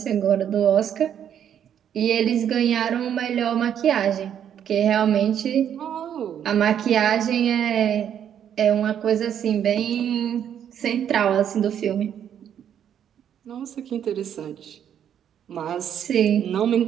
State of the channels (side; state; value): left; quieter; 9.3 dB